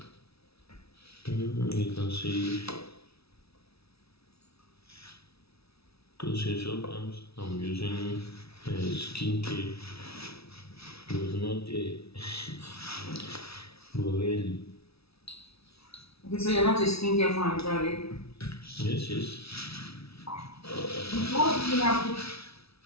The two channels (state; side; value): late; right; 0.77 ms